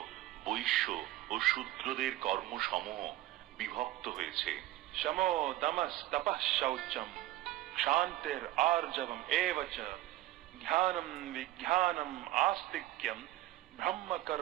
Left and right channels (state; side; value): quieter; left; 15.7 dB